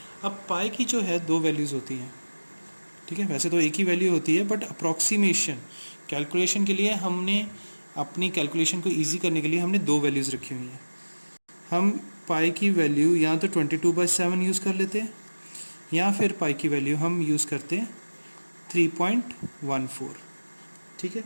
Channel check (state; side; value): inverted; both; correlation -1.00